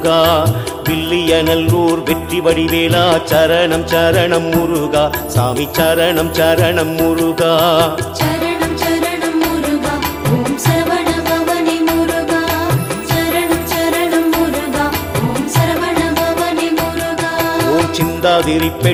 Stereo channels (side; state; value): both; identical; correlation 1.00